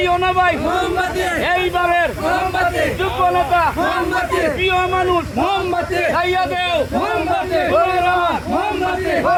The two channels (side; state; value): both; identical; correlation 1.00